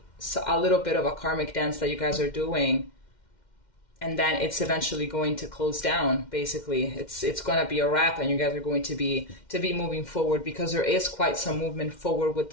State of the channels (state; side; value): late; right; 2.1 ms